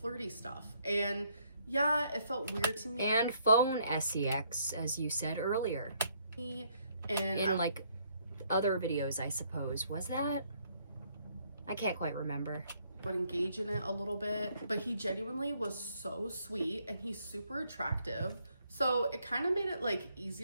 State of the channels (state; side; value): inverted; both; correlation -0.69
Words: stuff, and yeah, it felt weird to me. And phone sex, as you said earlier. And in like other videos, I suppose. Was that? I can't quite remember. Would engage in it a little bit, but he genuinely was so sweet, and he's super attractive. So it kind of made it like